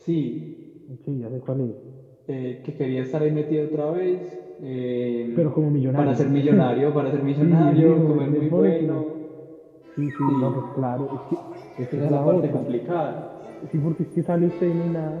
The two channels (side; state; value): both; identical; correlation 1.00